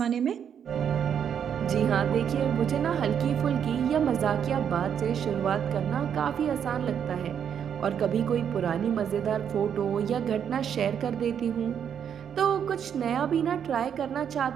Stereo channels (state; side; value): quieter; left; 8.3 dB